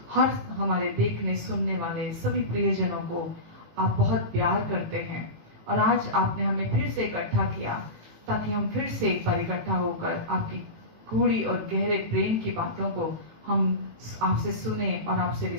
हर हमारे देखने सुनने वाले सभी प्रियजनों को आप बहुत प्यार करते हैं, और आज आपने हमें फिर से इकट्ठा किया ताकि हम फिर से एक बार इकट्ठा होकर आपकी गूढ़ी और गहरे प्रेम की बातों को हम आपसे सुने और आपसे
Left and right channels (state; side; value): late; left; 18 ms